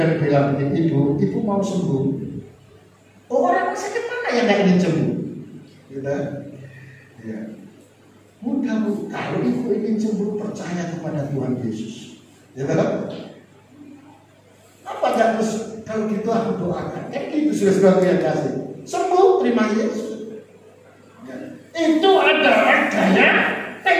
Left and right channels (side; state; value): both; identical; correlation 1.00